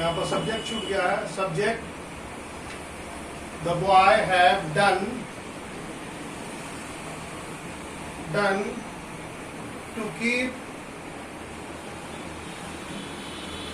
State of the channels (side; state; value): both; identical; correlation 1.00